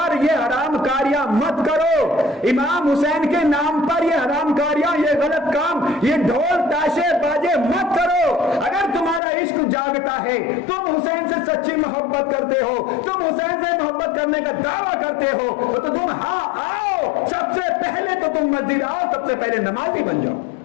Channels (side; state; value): right; drops out; at 9.2 s